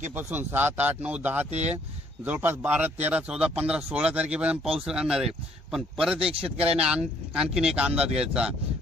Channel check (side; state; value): both; normal; correlation 0.65